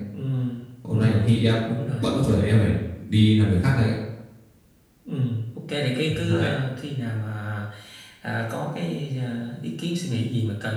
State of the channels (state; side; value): identical; both; correlation 1.00